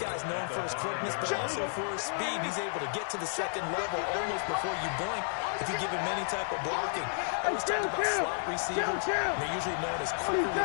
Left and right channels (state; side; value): silent; right; 56 dB below the other